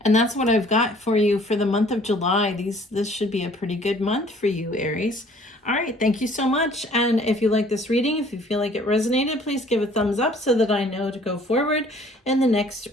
that's what I've got for you for the month of July. This should be a pretty good month for you, Aries. All right, thank you so much. And if you like this reading, if you feel like it resonated, please give a thumbs up so that I know to go forward in the next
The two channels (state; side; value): normal; both; correlation 0.55